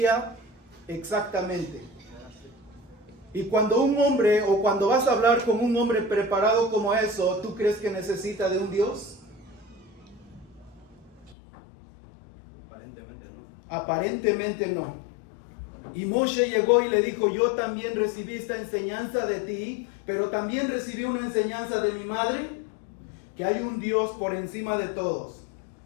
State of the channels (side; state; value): right; drops out; at 11.4 s